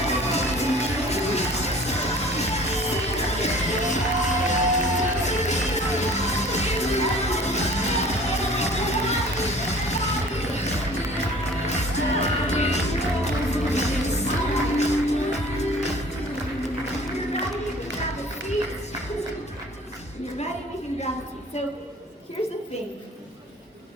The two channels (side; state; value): both; normal; correlation 0.47